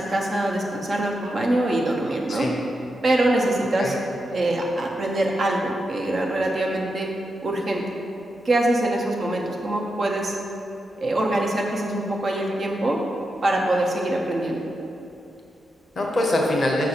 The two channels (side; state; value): both; normal; correlation 0.86